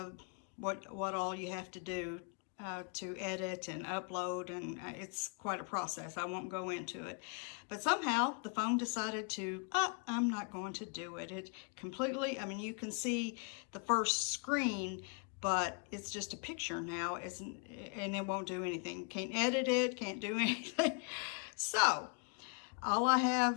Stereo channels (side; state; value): right; quieter; 37.9 dB